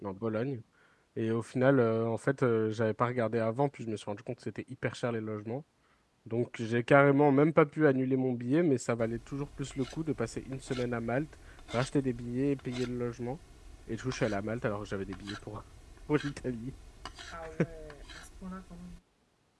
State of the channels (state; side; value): identical; both; correlation 1.00